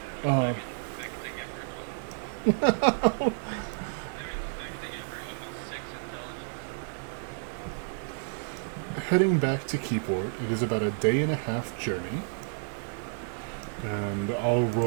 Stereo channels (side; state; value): left; silent; digital silence